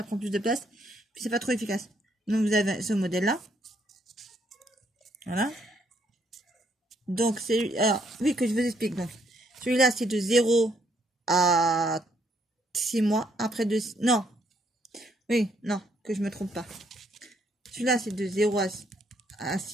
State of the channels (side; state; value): both; normal; correlation 0.70